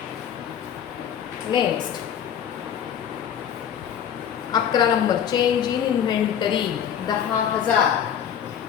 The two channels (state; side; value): quieter; right; 8.9 dB